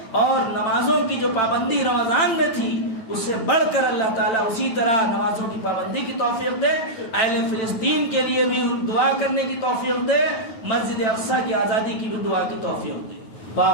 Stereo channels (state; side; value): late; right; 9.1 ms